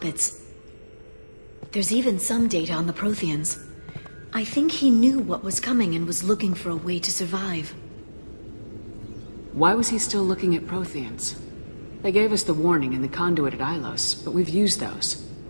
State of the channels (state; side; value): inverted; both; correlation -1.00